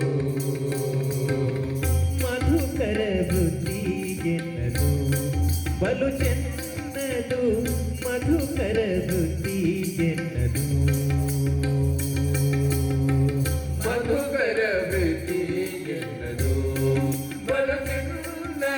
ಮಧುಕರ ವೃತ್ತಿ ಎನ್ನದು ಬಲು ಚೆನ್ನದು ಮಧುಕರ ವೃತ್ತಿ ಎನ್ನದು ಮಧುಕರ ವೃತ್ತಿ ಎನ್ನದು ಬಲು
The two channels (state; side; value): identical; both; correlation 1.00